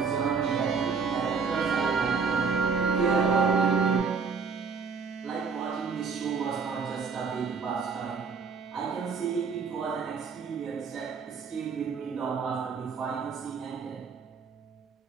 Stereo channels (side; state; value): left; quieter; 5.4 dB